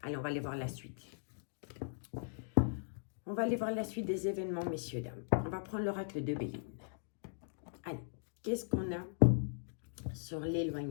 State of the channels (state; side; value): silent; right; digital silence